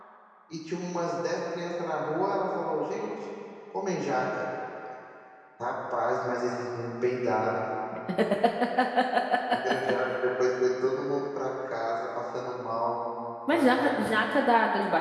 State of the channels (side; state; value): both; identical; correlation 1.00